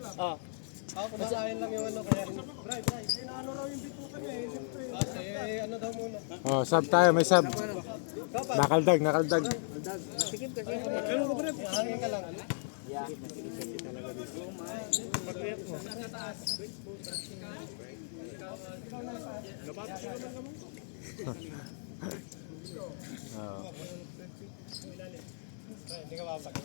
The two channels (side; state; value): right; silent; digital silence